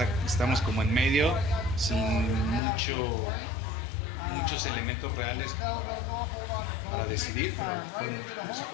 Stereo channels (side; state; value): right; drops out; at 2.6 s